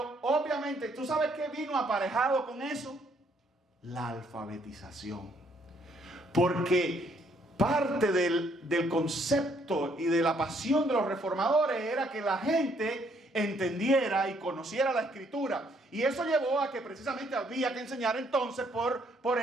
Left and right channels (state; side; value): normal; both; correlation 0.68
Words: obviamente, ¿tú sabes qué vino aparejado con eso? La alfabetización. Porque parte del concepto y de la pasión de los reformadores era que la gente entendiera y conociera la Escritura. Y eso llevó a que precisamente había que enseñar entonces, por